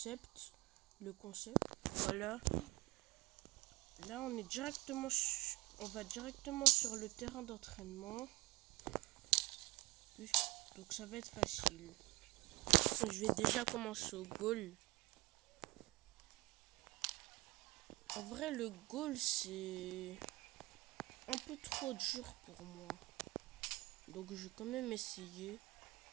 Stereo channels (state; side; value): quieter; left; 21.5 dB